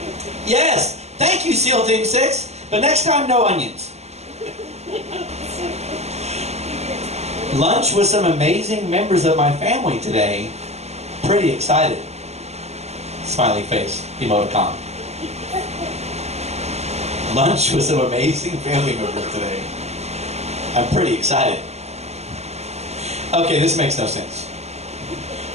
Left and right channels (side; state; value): left; late; 0.32 ms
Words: Yes, thank you, SEAL Team 6, but next time, no onions. Lunch with some amazing members of my family today. Pretty excited. Smiley face, emoticon. Lunch with some amazing family members today. I'm pretty excited. Okay, this makes no sense.